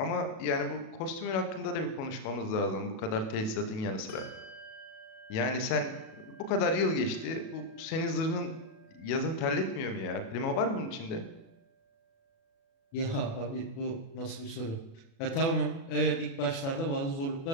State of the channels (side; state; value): right; late; 36 ms